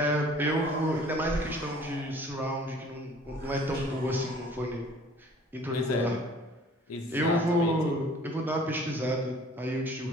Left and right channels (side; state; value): both; normal; correlation 0.52